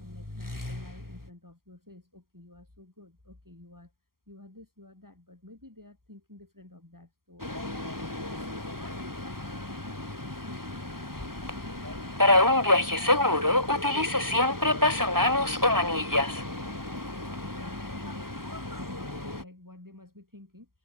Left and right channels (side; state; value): left; late; 0.93 ms